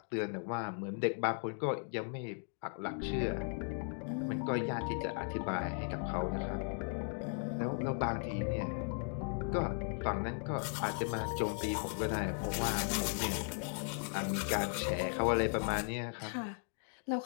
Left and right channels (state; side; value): silent; right; 53 dB below the other